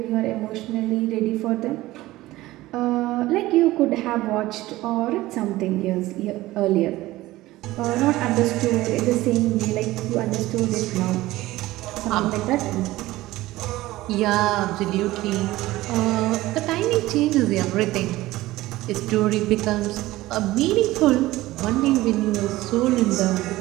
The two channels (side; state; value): left; quieter; 17.5 dB